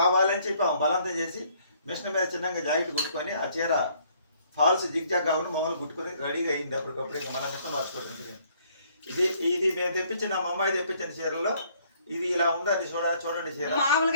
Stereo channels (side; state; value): both; inverted; correlation -0.64